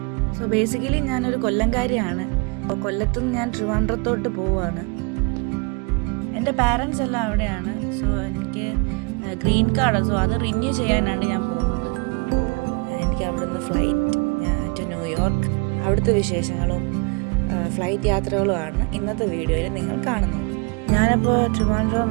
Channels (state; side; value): quieter; left; 31.3 dB